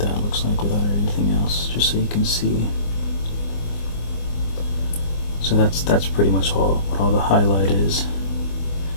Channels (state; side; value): late; right; 24 ms